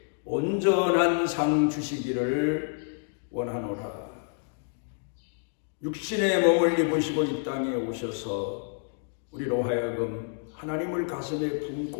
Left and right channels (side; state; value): right; silent; 58 dB below the other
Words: 온전한 상 주시기를 원하노라. 육신의 몸을 입으시고 이 땅에 오셔서 우리로 하여금 하나님을 가슴에